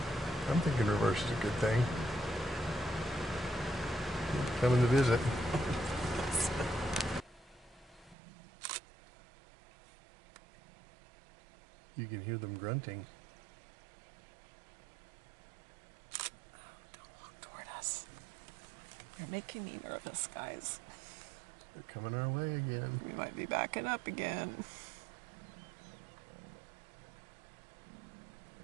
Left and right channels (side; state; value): left; drops out; at 8.2 s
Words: I'm thinking reverse is a good thing. Coming to visit. You can hear them grunting. Oh, don't walk toward us. You're making me nervous, guys. They're coming our way again. We might be backing up again.